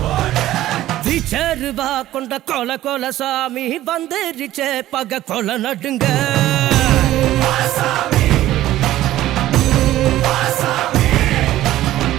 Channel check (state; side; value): quieter; left; 14.4 dB